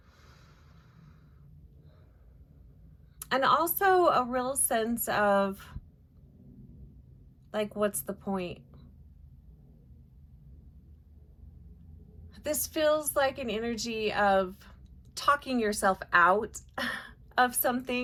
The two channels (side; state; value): both; identical; correlation 1.00